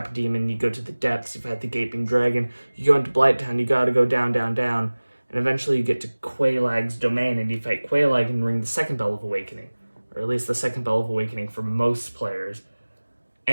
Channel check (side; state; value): both; inverted; correlation -1.00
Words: Demon, you go to the depths, you've had the Gaping Dragon, you go into Blighttown, you gotta go down, down, down, and eventually you get to Quelaag's domain, and you fight Quelaag and ring the second Bell of Awakening, or at least the second Bell of Awakening for most players.